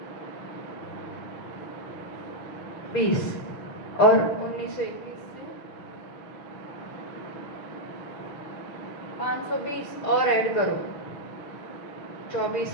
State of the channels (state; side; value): late; right; 6.7 ms